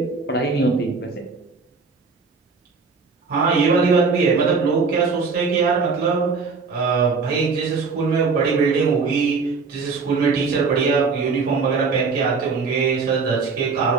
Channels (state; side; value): quieter; left; 4.7 dB